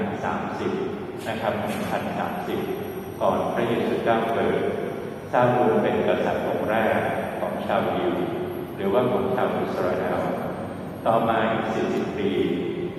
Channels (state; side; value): identical; both; correlation 1.00